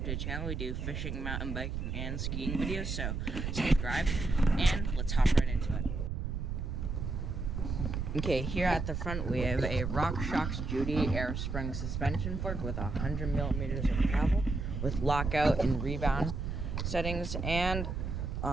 to the channel. We do fishing, mountain biking, and skiing videos, so subscribe and let's hop right into it. Okay, here at the front we have a RockShox Judy air spring suspension fork with 100 millimeters of travel with lockout and rebound settings, and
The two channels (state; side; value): noise; right; rumble, 3 dB below the sound